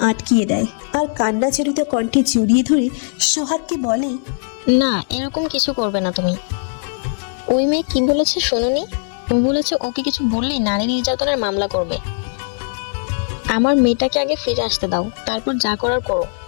আটকিয়ে দেয় আর কান্না জড়িত কণ্ঠে জড়িয়ে ধরে সোহাগকে বলে, না, এরকম কিছু করবে না তুমি। ওই মেয়ে কি বলেছে শুনুনি? ও বলেছে ওকে কিছু বললেই নারী নির্যাতনের মামলা করবে। আমার মেয়েটাকে আগে ফিরে আসতে দাও, তারপর যা করার করো।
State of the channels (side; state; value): right; silent; digital silence